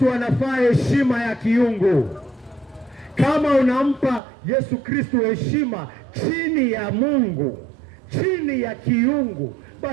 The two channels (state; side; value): drops out; left; at 4.2 s